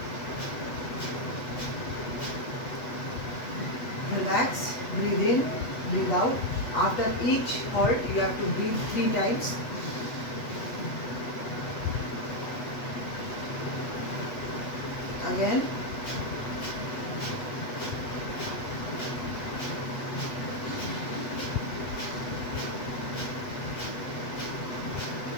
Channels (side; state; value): right; late; 8.2 ms